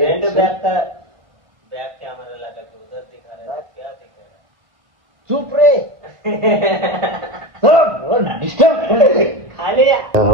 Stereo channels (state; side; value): late; left; 1.4 ms